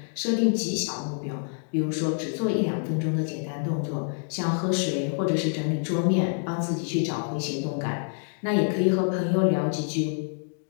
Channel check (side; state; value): right; silent; 60 dB below the other